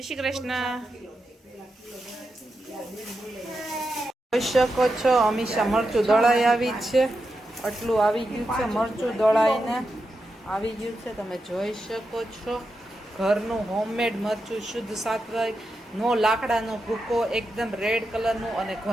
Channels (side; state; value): both; normal; correlation 0.88